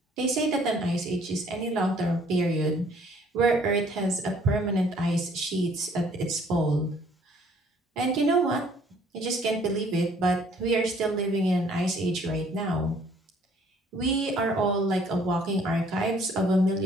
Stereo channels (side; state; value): both; normal; correlation 0.60